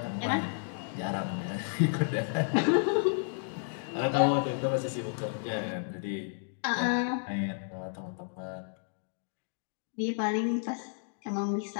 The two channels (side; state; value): right; silent; digital silence